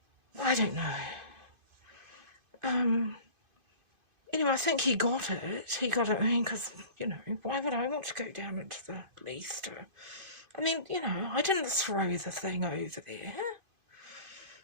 I don't know. Anyway, I think he got it. I mean, because, you know, why would I want to go down into the Leicester? I mean, you know, I didn't throw the thing over there.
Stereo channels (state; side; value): late; left; 2.5 ms